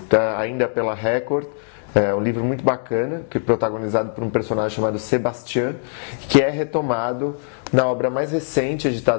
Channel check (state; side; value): silent; right; digital silence